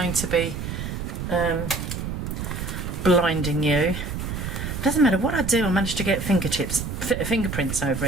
to be blinding you, it doesn't matter what I do. I managed to get fingerprints over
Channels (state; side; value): noise; right; rumble, 5 dB below the sound